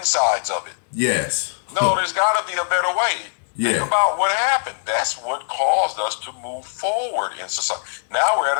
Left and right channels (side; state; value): right; silent; 65 dB below the other